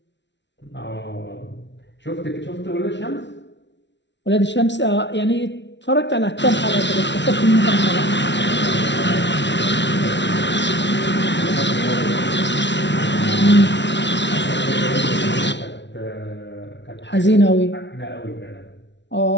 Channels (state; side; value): late; right; 0.51 ms